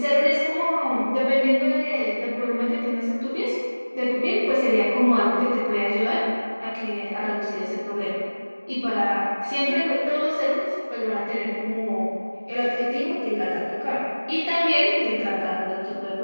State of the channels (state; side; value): inverted; both; correlation -1.00